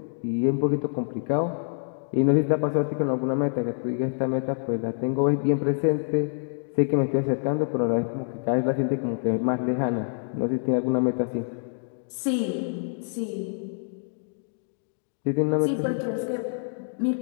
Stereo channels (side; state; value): right; silent; digital silence